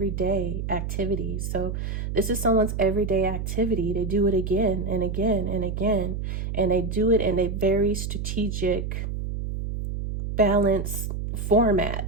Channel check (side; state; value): right; noise; hum, 4 dB below the sound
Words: activities. So this is someone's everyday activity. They do it again and again and again, and they do it in a very strategic, balanced